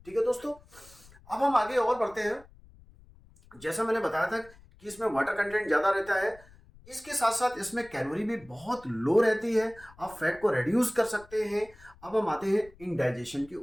ठीक है दोस्तों, अब हम आगे और बढ़ते हैं। जैसा मैंने बताया था कि इसमें वाटर कंटेंट ज्यादा रहता है, इसके साथ साथ इसमें कैलोरी भी बहुत लो रहती है। आप फैट को रिड्यूस कर सकते हैं। अब हम आते हैं इनडाइजेशन के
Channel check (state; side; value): noise; left; rumble, 24 dB below the sound